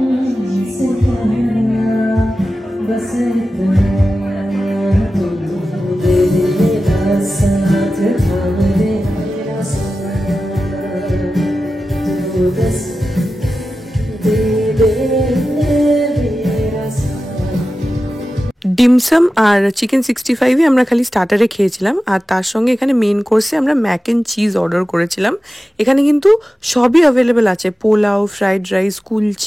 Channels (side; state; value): both; normal; correlation 0.94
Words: ডিমসাম আর চিকেন 65 আমরা খালি স্টার্টারে খেয়েছিলাম, আর তার সঙ্গে এখানে মেন কোর্সে আমরা ম্যাক অ্যান্ড চিজ অর্ডার করেছিলাম। এখানে কিন্তু সবই অ্যাভেলেবেল আছে, পোলাও, ফ্রাইড রাইস,